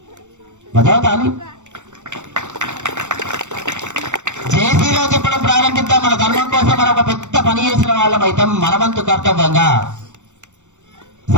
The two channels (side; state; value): left; late; 0.84 ms